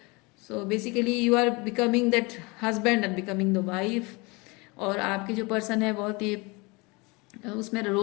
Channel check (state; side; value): quieter; right; 26.6 dB